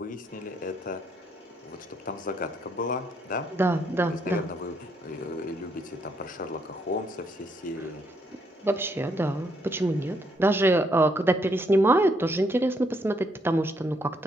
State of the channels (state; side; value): normal; both; correlation 0.73